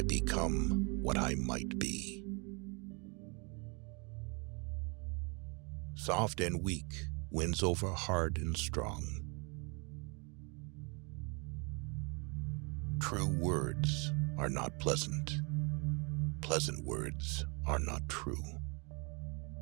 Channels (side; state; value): left; quieter; 32.0 dB